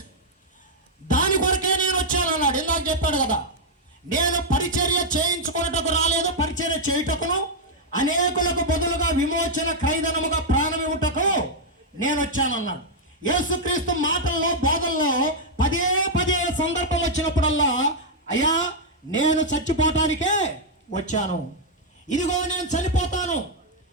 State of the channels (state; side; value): normal; both; correlation -0.02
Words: దాని కొరకే నేను వచ్చాను అన్నాడు. ఇందాక చెప్పాడు కదా, నేను పరిచర్య చేయించుకున్నటకు రాలేదు, పరిచర్య చేయుటకును అనేకులకు బదులుగా విమోచన క్రైదనముగా ప్రాణమివ్వుటకు నేను వచ్చానన్నాడు. యేసుక్రీస్తు మాటల్లో బోధనలో పదే పదే సందర్భం వచ్చినప్పుడల్లా, అయ్యా నేను చచ్చిపోవటానికే వచ్చాను, ఇదిగో నేను చనిపోతాను,